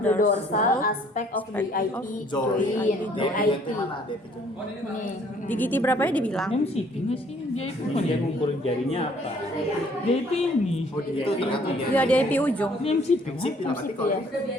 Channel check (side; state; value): both; normal; correlation 0.60